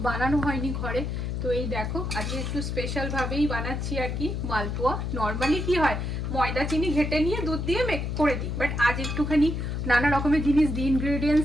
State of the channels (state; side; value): noise; left; hum, 3 dB below the sound